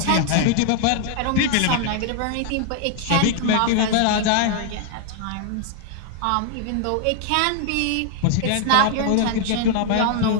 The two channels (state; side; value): different; both; correlation 0.00